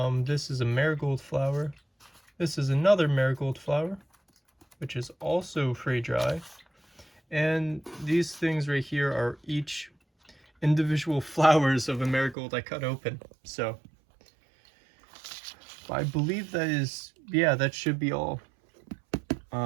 is a marigold flower. This is another marigold flower, which is also fray dry. And these things right here are each individual flowers of a marigold I cut open. So I believe that is, yeah, that should be all.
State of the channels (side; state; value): left; drops out; at 12.4 s